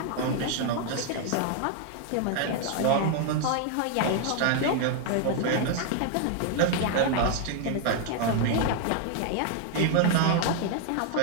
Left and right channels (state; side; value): different; both; correlation 0.00